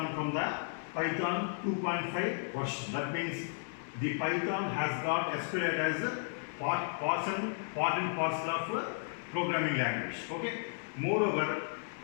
from the Python 2.5 version. That means the Python has got SQLite as a part and parcel of programming language. Okay. Moreover,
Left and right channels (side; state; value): right; silent; digital silence